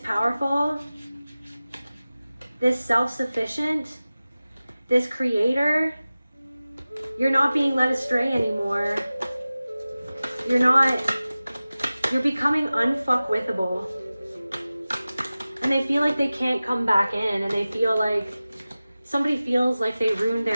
powerful, this self-sufficient, this creator. You're not being led astray anymore. you're becoming unfuckwithable. And they feel like they can't come back in, and they feel like somebody feels like they ruined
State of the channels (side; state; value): both; inverted; correlation -0.97